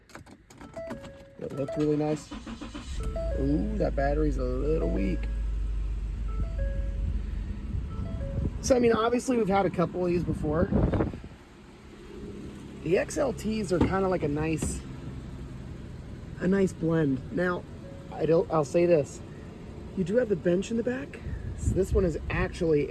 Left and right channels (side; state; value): both; identical; correlation 1.00